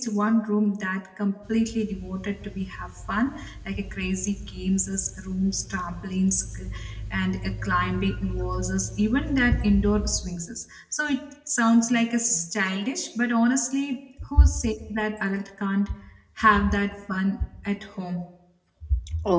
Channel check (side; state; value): both; identical; correlation 1.00